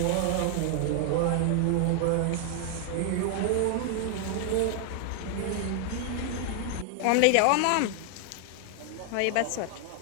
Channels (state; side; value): different; both; correlation 0.00